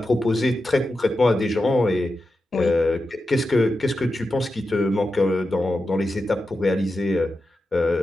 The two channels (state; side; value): normal; both; correlation 0.90